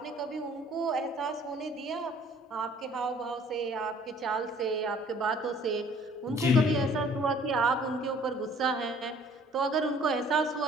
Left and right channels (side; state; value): both; normal; correlation 0.55